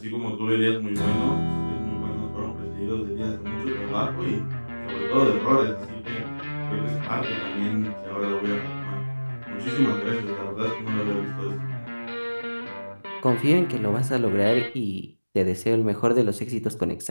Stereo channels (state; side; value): inverted; both; correlation -1.00